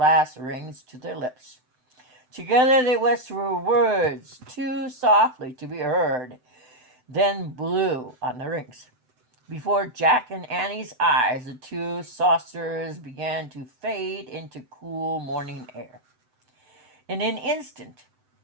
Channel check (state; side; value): late; left; 7.9 ms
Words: rings to their lips. Together they whispered words too softly to be heard, then blew on the rings. Before Jack and Annie's eyes, the two saucers began to fade into cool morning air. In an instant,